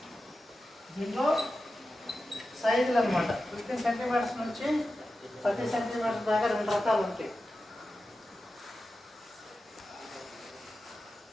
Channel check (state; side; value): normal; both; correlation 0.92